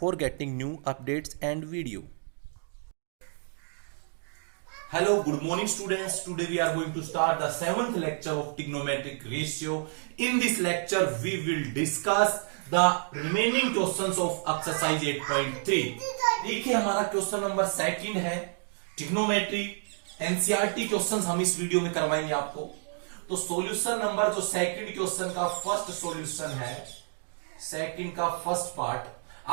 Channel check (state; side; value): silent; left; 58 dB below the other